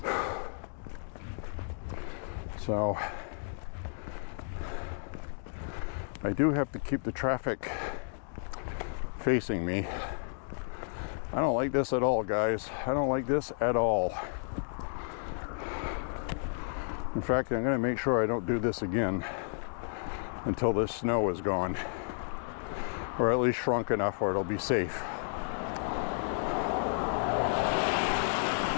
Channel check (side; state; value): right; silent; digital silence